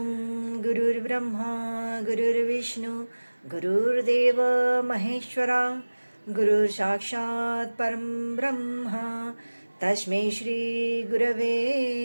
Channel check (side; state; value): both; inverted; correlation -1.00